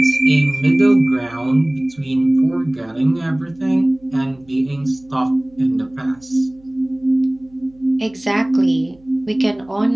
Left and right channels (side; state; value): right; noise; hum, 30 dB below the sound